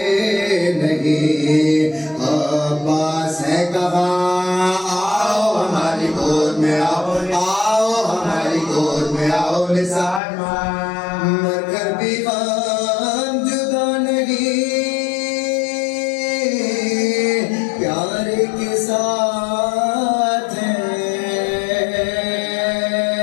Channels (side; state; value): right; drops out; at 10.2 s